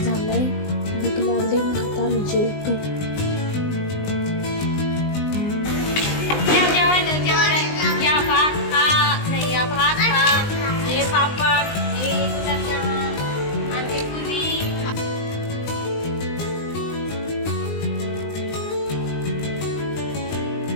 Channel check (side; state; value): right; late; 19 ms